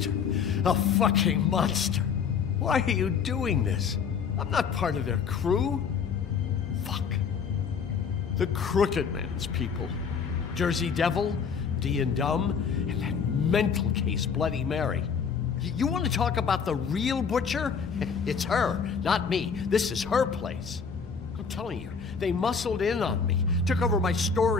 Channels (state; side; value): quieter; right; 6.2 dB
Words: A fucking monster. Why are you doing this? I'm not part of their crew. Fuck. The Crooked Man's people. Jersey Devil, D and Dumb, and that mental case, Bloody Mary. You want to talk about the real butcher? It's her, not me. This is her place. I'm telling you, they muscled in on me, took over my